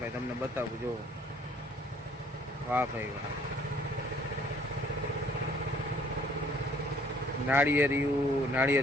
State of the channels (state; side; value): normal; both; correlation 0.59